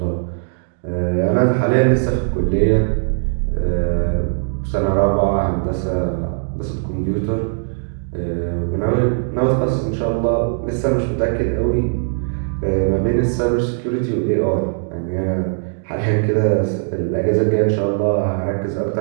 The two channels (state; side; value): silent; left; digital silence